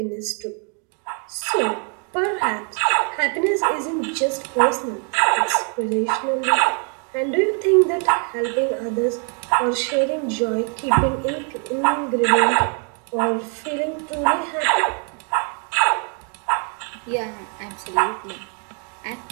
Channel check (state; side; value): quieter; left; 39.5 dB